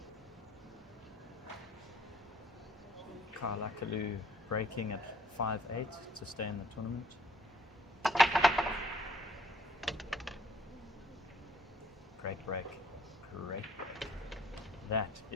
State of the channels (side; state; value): both; normal; correlation 0.61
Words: Kyle Akaloo breaking at 5-8 to stay in the tournament. Great break. Great. That